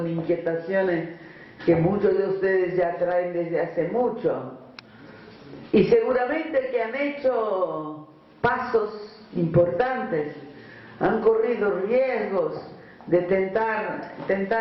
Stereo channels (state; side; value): identical; both; correlation 1.00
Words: inquietaciones que muchos de ustedes ya traen desde hace mucho. Y seguramente que han hecho pasos importantes, han corrido riesgos de